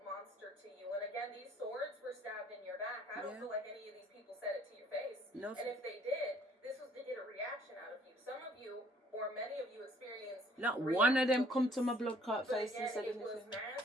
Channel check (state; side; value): normal; both; correlation 0.60